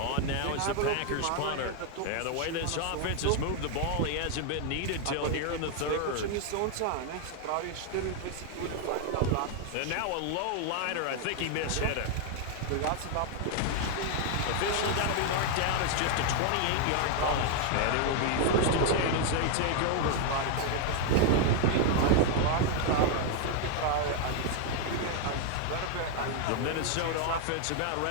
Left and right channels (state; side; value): different; both; correlation 0.00